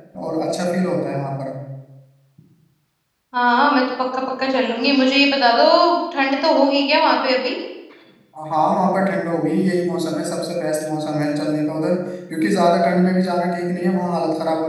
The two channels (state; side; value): identical; both; correlation 1.00